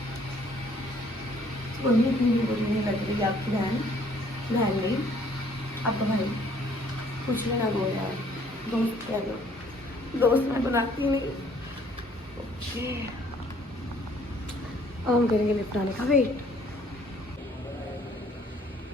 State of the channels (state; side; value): normal; both; correlation 0.60